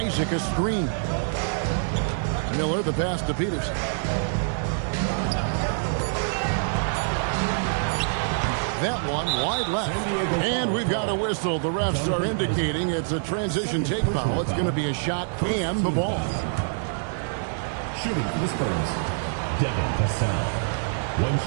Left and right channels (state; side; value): silent; left; 61 dB below the other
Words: a screen. Miller the pass to Peterson. That one wide left. And we've got a whistle. The refs are indicating it's a transition take foul. It's going to be a shot and the ball. Shooting for the Spurs, Devin Vassell. 1